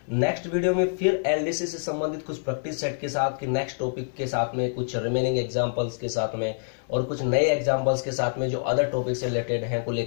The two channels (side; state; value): right; silent; 61 dB below the other